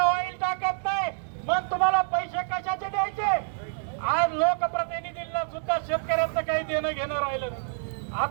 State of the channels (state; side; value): silent; left; digital silence